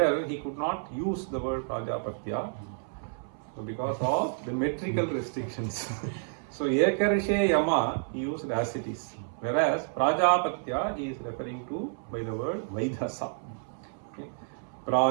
he could not use the word Prajapatya, so because of the metrical restrictions. So Yekarshe Yama he used as it is, whereas Prajapatya he is referring to by the word Vaidhasa. Okay.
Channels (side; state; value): left; silent; 58 dB below the other